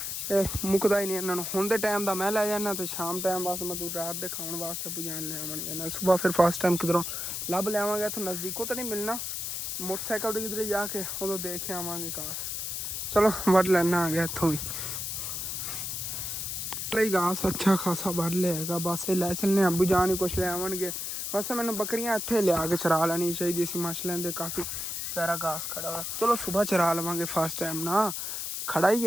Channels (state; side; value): noise; left; hiss, 4 dB below the sound